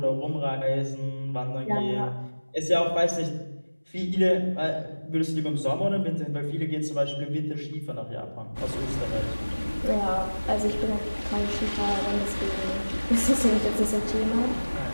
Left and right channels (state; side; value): inverted; both; correlation -1.00